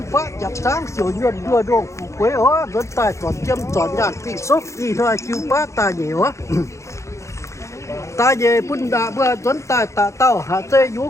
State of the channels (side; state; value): right; late; 0.14 ms